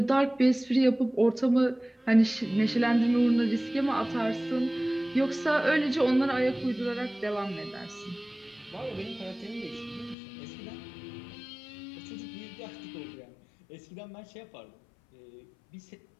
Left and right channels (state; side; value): drops out; right; at 10.2 s